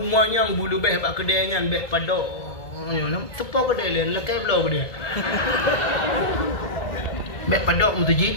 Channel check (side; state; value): right; late; 1.8 ms